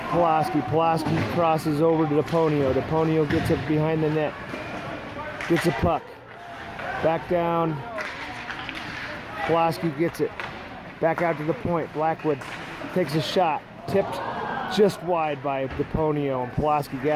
Pulaski. Pulaski crosses over to Deponio. Deponio gets it behind the net. Gets a puck. Back down. Pulaski gets it. Back out to the point. Blackwood takes a shot. Tipped just wide by Deponio. And Pulaski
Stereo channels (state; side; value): identical; both; correlation 1.00